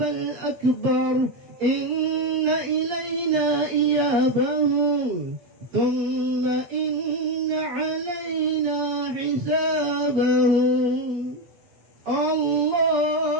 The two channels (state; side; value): late; left; 8.5 ms